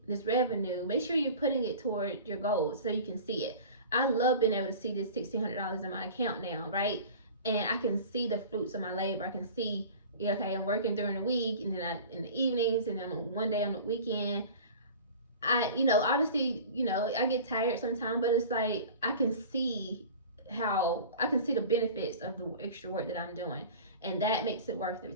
this revenue, make sure you're putting it toward your goals so you can see it. I love being able to see this $1,600 in my account now, right? And I can see the fruits of my labor. I can see, okay, I'm working during the week, and then in the evenings, and then one day on the weekend. Obviously, I get tired sometimes, but it's like I can see the benefits of the extra work that I'm doing, and that makes it worth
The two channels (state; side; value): inverted; both; correlation -0.39